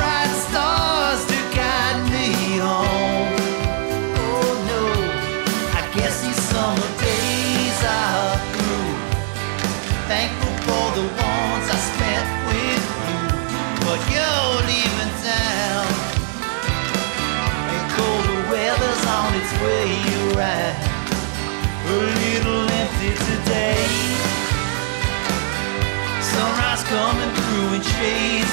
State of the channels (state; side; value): silent; left; digital silence